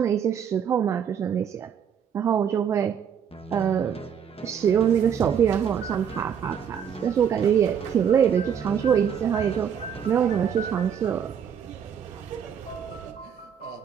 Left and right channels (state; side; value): quieter; left; 8.0 dB